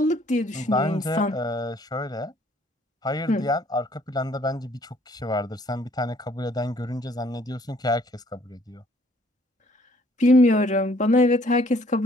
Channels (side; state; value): both; normal; correlation 0.61